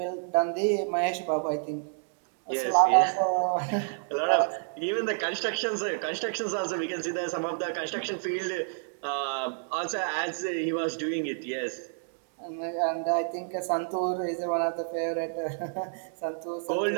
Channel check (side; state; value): left; silent; digital silence